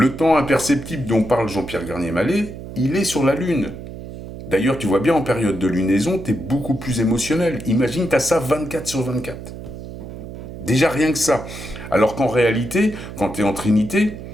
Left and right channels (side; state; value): right; noise; hum, 11 dB below the sound